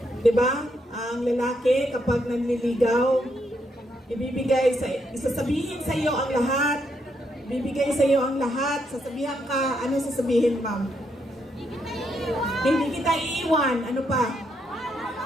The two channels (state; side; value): normal; both; correlation 0.77